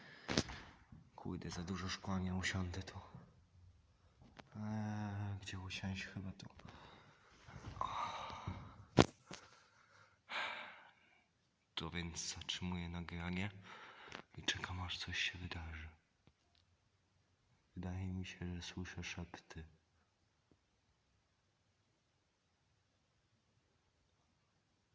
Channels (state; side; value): identical; both; correlation 1.00